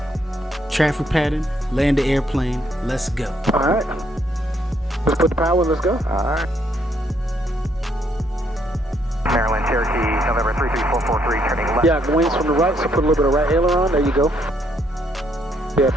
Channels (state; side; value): normal; both; correlation 0.71